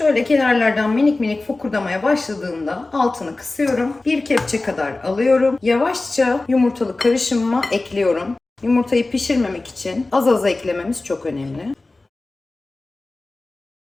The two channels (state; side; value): quieter; right; 3.2 dB